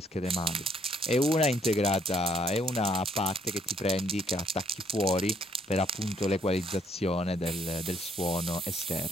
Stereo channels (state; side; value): normal; both; correlation 0.68